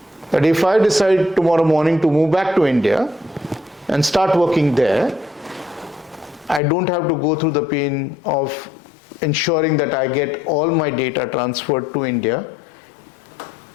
That if I decide tomorrow morning to move back to India and start working there, I don't have to go through the pain of ensuring that I get all my data transferred to India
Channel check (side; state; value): right; drops out; at 6.6 s